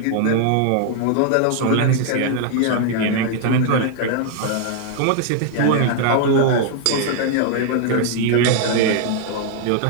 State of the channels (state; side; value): different; both; correlation 0.00